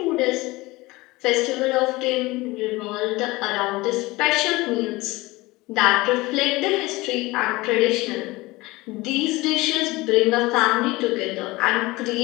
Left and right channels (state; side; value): quieter; right; 21.2 dB